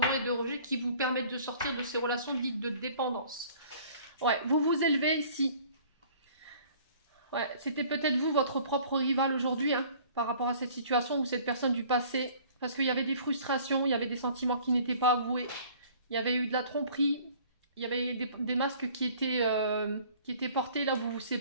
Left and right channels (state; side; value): inverted; both; correlation -0.52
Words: et de rejet qui vous permettent de sortir de ces relations dites de dépendance. Ouais, vous vous élevez ici. Ouais, c'était peut-être vous, votre propre rival aujourd'hui, hein, par rapport à cette situation ou cette personne du passé. Parce qu'il y avait des frustrations, il y avait des sentiments qui n'étaient pas avoués. Il y avait eu de la tromperie. Il y avait des masques qui étaient portés là où vous vous